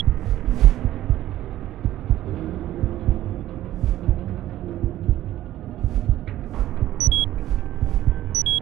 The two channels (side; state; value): left; quieter; 13.8 dB